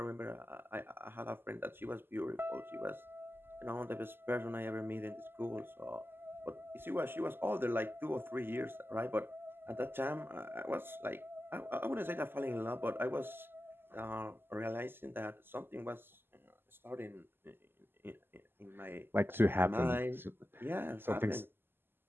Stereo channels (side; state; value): left; late; 0.10 ms